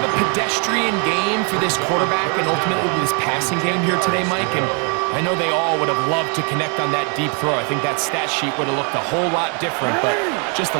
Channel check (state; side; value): quieter; left; 37.7 dB